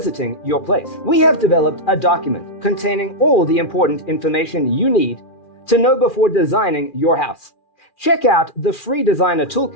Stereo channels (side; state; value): right; late; 2.4 ms